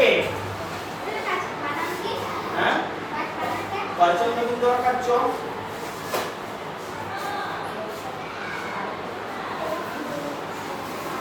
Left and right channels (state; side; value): identical; both; correlation 1.00